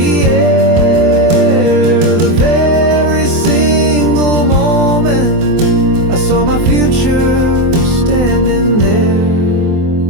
air. The very single moment I saw my future standing there.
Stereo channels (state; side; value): late; left; 24 ms